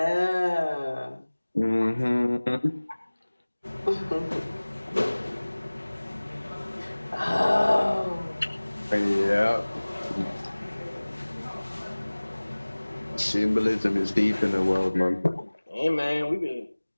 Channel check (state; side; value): inverted; both; correlation -1.00